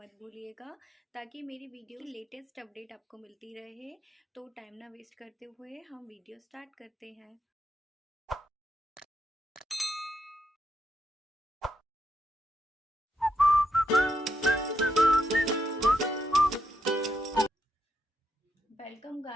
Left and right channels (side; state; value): both; normal; correlation 0.81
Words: भूलिएगा ताकि मेरी वीडियो की लेटेस्ट अपडेट आपको मिलती रहे। तो टाइम ना वेस्ट करते हुए हम वीडियो स्टार्ट करते हैं। Welcome